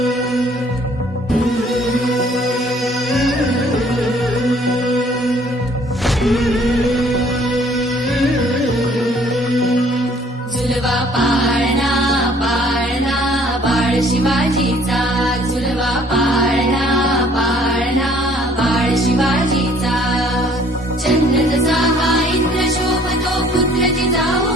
झुलवा पाळणा पाळणा बाळ शिवाजीचा झुलवा पाळणा पाळणा बाळ शिवाजीचा चंद्र जसा हा इंद्र शोभतो पुत्र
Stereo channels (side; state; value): both; normal; correlation 0.58